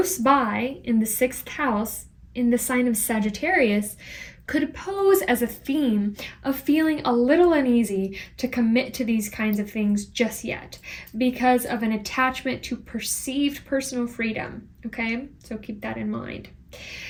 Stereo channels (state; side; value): identical; both; correlation 1.00